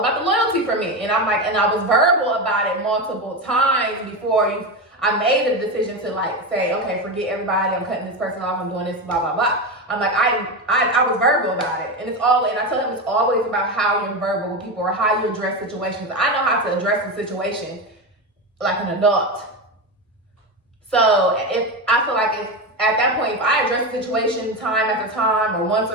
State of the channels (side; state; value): both; normal; correlation 0.17